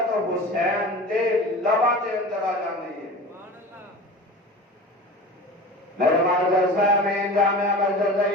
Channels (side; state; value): both; normal; correlation 0.35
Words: حسین دے لبا دے اندر آ جاندی ہے۔ میرے معزز سامعین، جامعہ مسجد